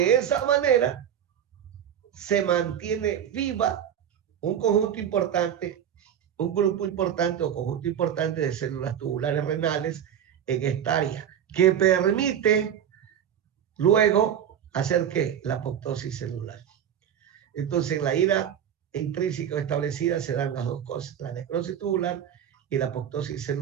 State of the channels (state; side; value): quieter; left; 9.4 dB